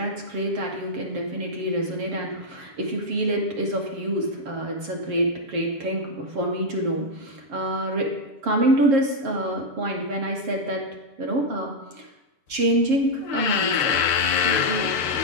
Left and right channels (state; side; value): late; left; 6.7 ms